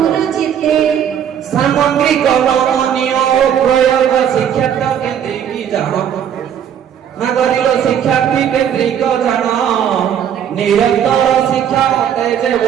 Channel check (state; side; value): quieter; left; 9.1 dB